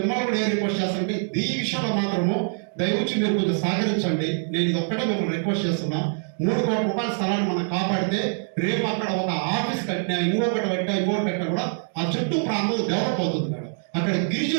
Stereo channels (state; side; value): silent; left; 62 dB below the other